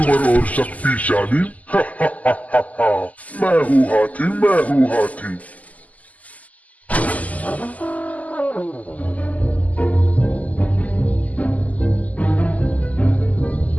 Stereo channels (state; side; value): late; right; 0.075 ms